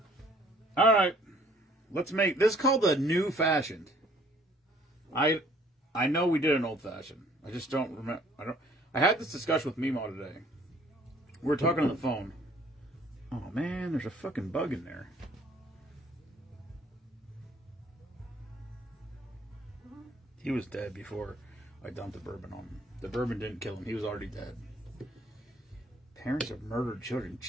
All right. Let's make this called the new fashioned. I know we did an old fashioned. I just don't remember. I had this discussion with Mimo today. We were talking on the phone. Oh man, there's a fucking bug in there. He was dead before I dumped the bourbon on him. The bourbon didn't kill him. He was already dead. Parents of murdered children.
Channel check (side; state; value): both; normal; correlation 0.58